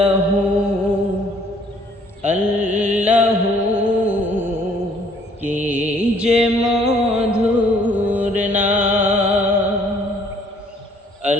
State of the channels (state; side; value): normal; both; correlation 0.61